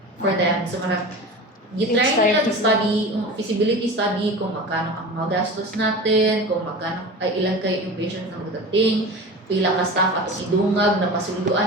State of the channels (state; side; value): normal; both; correlation 0.33